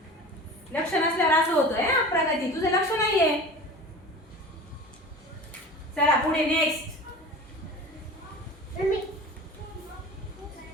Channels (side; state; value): both; normal; correlation 0.37